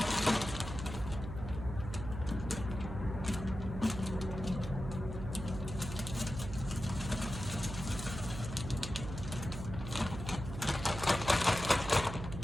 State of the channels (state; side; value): noise; right; hum, 8 dB below the sound